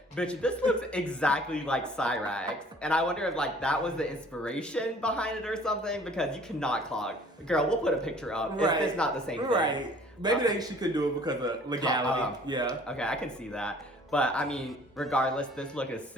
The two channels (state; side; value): normal; both; correlation 0.53